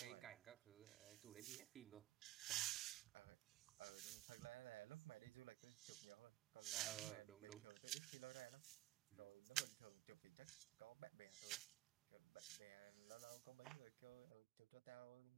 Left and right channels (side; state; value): left; quieter; 15.7 dB